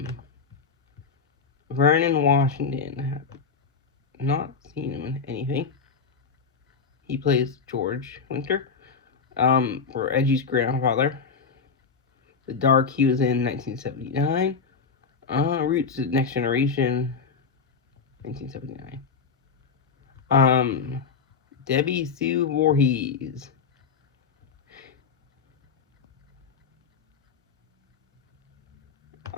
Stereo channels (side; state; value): right; quieter; 5.4 dB